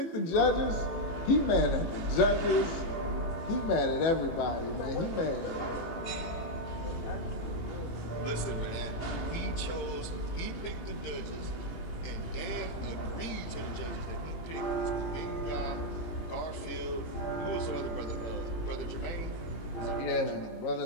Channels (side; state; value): right; late; 18 ms